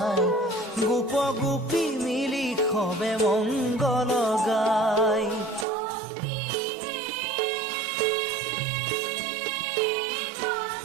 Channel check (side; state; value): left; drops out; at 5.7 s